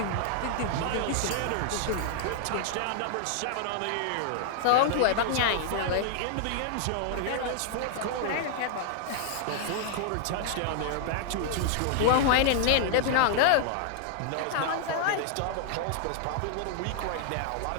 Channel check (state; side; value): different; both; correlation -0.01